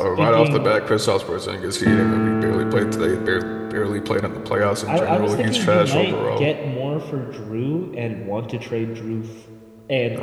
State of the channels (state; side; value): identical; both; correlation 1.00